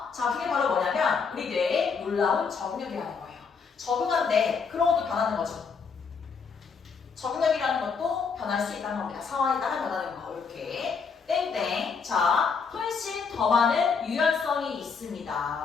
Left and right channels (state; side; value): quieter; right; 5.5 dB